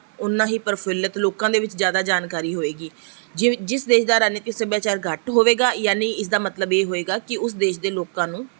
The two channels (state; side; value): silent; left; 56 dB below the other